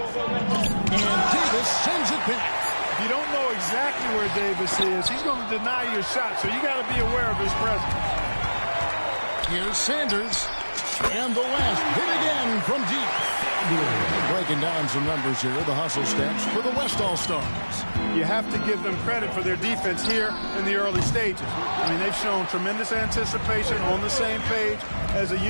And Davis sends it back. If you don't know exactly where Davis is, he's going to deny your shot, so you got to be aware of his presence. Here's Sanders. And the West hit again from deep. Breaking down some numbers here, the hustle stats for the West All-Stars. You have to give them credit for their defense here in the early stages. I mean, they've shown tremendous anticipation, on the same page as a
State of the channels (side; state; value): both; inverted; correlation -1.00